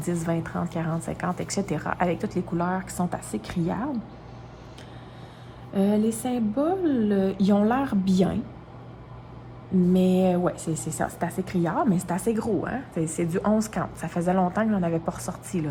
20, 30, 40, 50, etc. Avec toutes les couleurs qui sont assez criardes. Les symboles, ils ont l'air bien. Mais ouais, c'est ça, c'est assez criard, mais c'est assez gros, hein? C'est du 11 count. Ça faisait longtemps que j'en avais pas ressorti, là,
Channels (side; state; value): both; identical; correlation 1.00